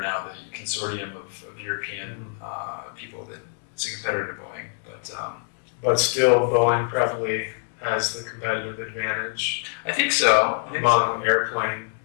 the consortium of European people that it's a competitor to Boeing, but still Boeing probably has the competitive advantage. I think so. Among airplane,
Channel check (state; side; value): silent; right; digital silence